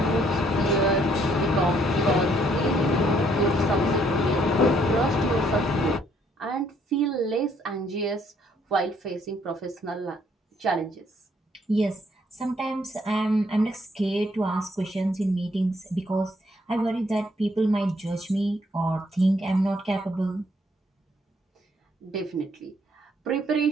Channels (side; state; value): both; normal; correlation 0.67